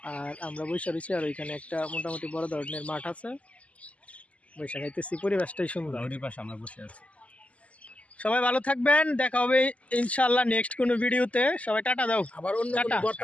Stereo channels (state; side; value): late; right; 0.066 ms